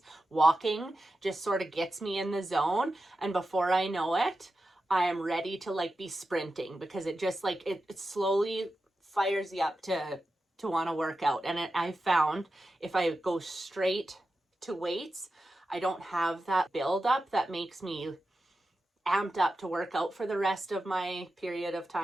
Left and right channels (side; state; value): both; normal; correlation 0.91